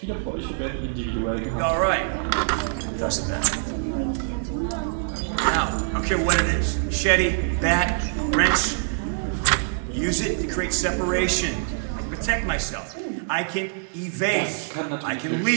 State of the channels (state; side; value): silent; left; digital silence